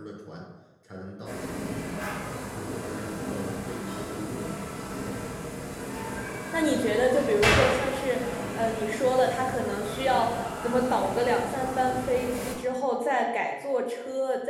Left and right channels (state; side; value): identical; both; correlation 1.00